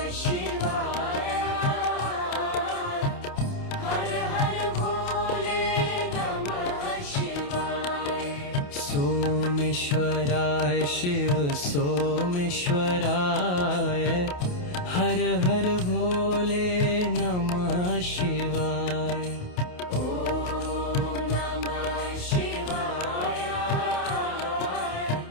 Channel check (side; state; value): right; late; 28 ms